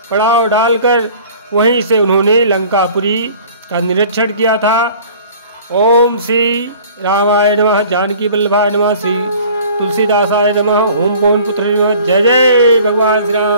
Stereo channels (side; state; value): both; inverted; correlation -0.49